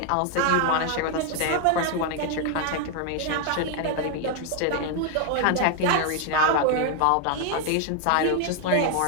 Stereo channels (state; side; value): different; both; correlation 0.00